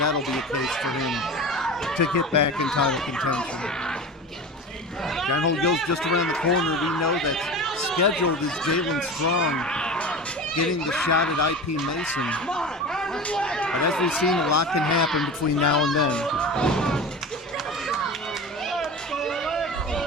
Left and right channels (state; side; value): normal; both; correlation 0.31